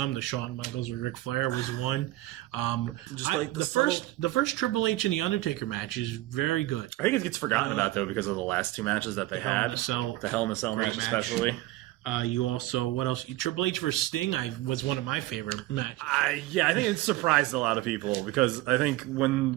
The Shawn Michaels with Ric Flair was one. The first Triple H and The Undertaker match is very good. I think it gets forgotten about though because of the last two matches that they had. The Hell in a Cell match especially. You also, what else? Triple H vs. Sting was one of my favorite matches. I think it surprised a lot of people because I think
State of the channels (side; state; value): left; quieter; 17.6 dB